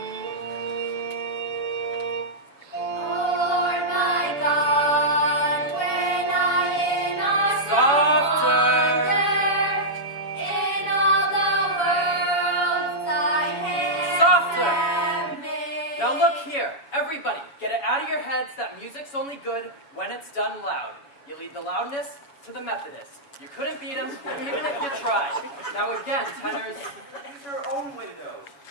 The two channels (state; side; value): late; right; 7.1 ms